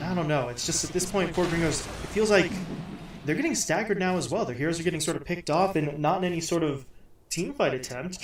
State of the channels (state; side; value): identical; both; correlation 1.00